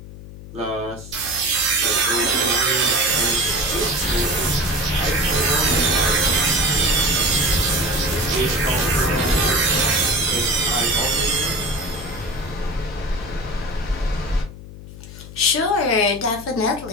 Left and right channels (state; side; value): noise; left; hum, 15 dB below the sound